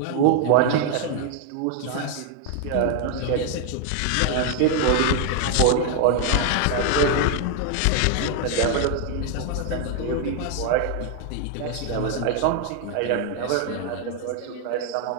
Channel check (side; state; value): both; different; correlation 0.00